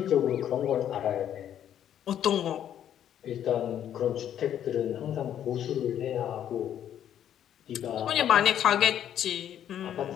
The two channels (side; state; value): right; quieter; 10.2 dB